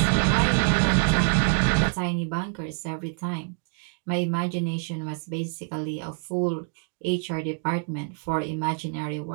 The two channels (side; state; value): left; quieter; 39.9 dB